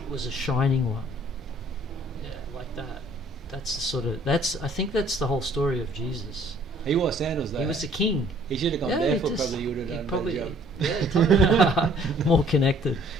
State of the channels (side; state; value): both; normal; correlation 0.58